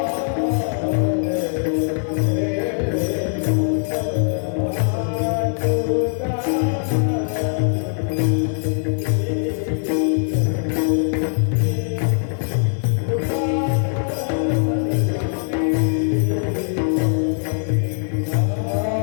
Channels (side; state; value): right; silent; digital silence